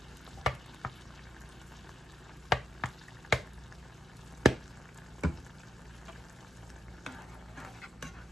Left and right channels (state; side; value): normal; both; correlation 0.86